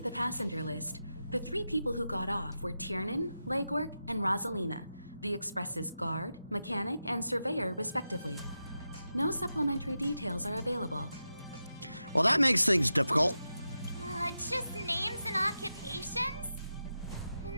the passenger list, the 3 people who got off were Tiernan, Legwork, and Rosalina, the Express's guard, mechanic, and surveyor, respectively. No supplementary details are available. Well, that makes things difficult. Just names and occupations?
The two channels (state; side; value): inverted; both; correlation -0.90